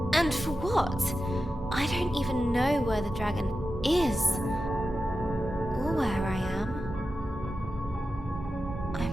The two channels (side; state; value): both; normal; correlation 0.92